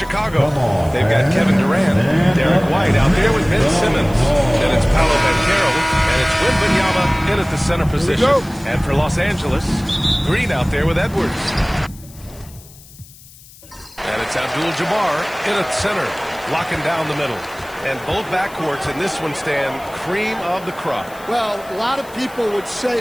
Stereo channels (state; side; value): noise; left; hiss, 22 dB below the sound